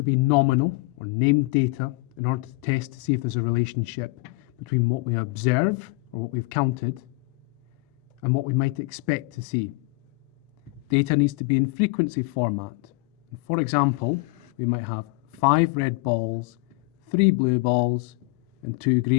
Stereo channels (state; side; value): quieter; right; 25.8 dB